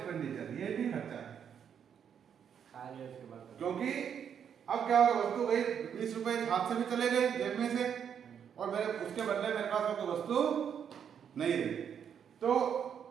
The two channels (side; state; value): left; quieter; 8.1 dB